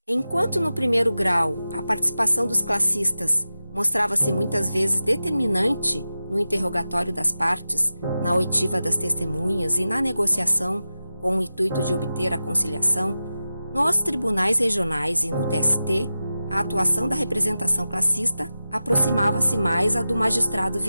Enquanto no primeiro grau a participação dos classistas mostrava-se muitas vezes determinante no interrogatório das partes, na oitiva das testemunhas e na negociação com o intuito de obter a conciliação, nos tribunais regionais e no TST, a atuação da representação classista aproximava-se mais à do magistrado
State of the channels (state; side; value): inverted; both; correlation -0.93